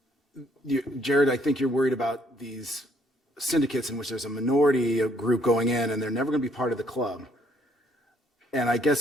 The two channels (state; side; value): normal; both; correlation 0.66